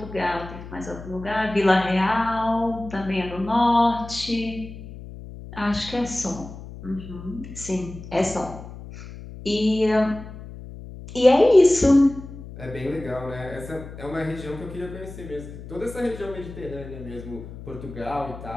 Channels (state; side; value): noise; left; hum, 13 dB below the sound